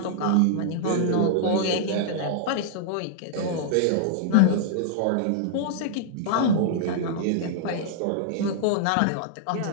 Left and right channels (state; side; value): different; both; correlation -0.01